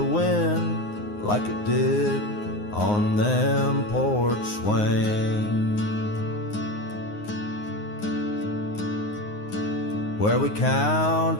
wind like it did on them porch swings, where we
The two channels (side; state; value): right; late; 9.6 ms